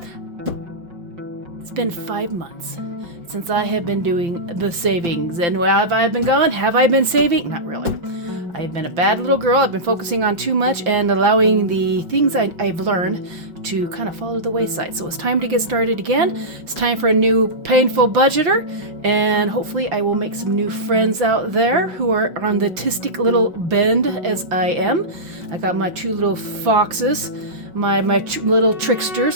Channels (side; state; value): left; late; 5.8 ms